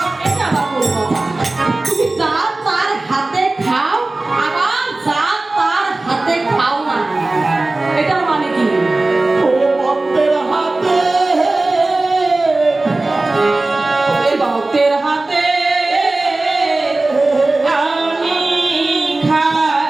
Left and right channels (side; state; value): left; quieter; 3.0 dB